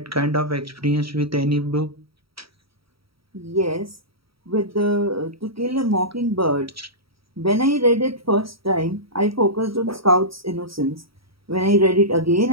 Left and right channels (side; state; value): left; late; 0.75 ms